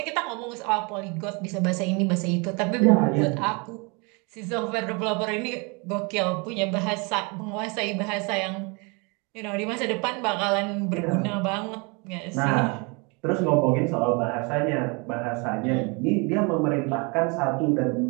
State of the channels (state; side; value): quieter; left; 30.6 dB